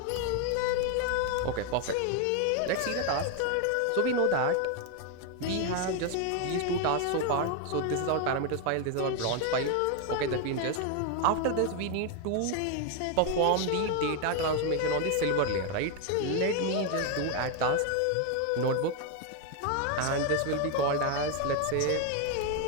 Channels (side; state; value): both; different; correlation 0.01